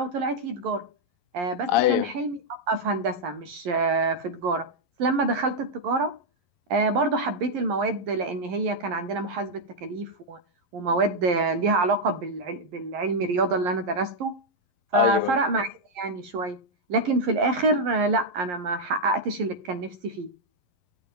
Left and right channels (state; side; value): late; left; 11 ms